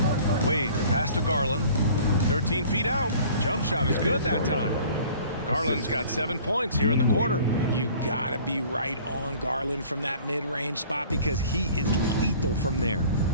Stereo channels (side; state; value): both; inverted; correlation -0.49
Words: Wade, pass to Garland. 13 feet out. Jump shot is good that time. Garland's got 7 points here in the quarter. You gotta be right on Garland from that mid-range spot because he is lethal from there.